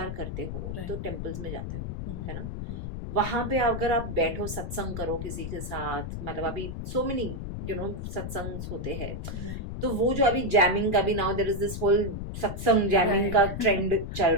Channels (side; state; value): left; noise; rumble, 6 dB below the sound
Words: करते हो Right. तो टेम्पल्स में जाते हो, Hmm. है ना, Hmm. वहां पे अगर आप बैठो सत्संग करो किसी के साथ, मतलब अभी सो मेनी सत्संग होते हैं, Right. तो वो जो अभी जैमिंग का भी now there is this whole satsang jamming का Right. ट्रेंड चल